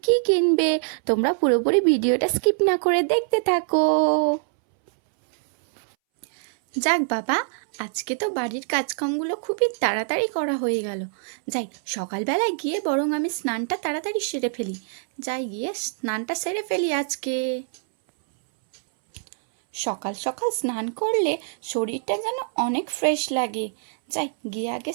কি কিনবে। তোমরা পুরোপুরি ভিডিওটা স্কিপ না করে দেখতে থাকো। যাক বাবা, আজকে তো বাড়ির কাজকামগুলো খুবই তাড়াতাড়ি করা হয়ে গেল। যাই সকালবেলায় গিয়ে বরং আমি স্নানটা তাড়াতাড়ি সেরে ফেলি। যাই গিয়ে স্নানটা সেরে ফেলি আজকে। সকাল সকাল স্নান করলে শরীরটা যেন অনেক ফ্রেশ লাগে। যাই গিয়ে আগে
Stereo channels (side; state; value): left; silent; 62 dB below the other